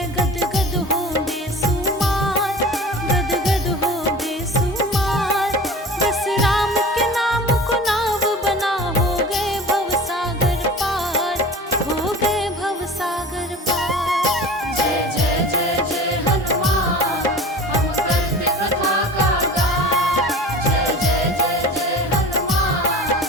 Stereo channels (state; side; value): normal; both; correlation 0.38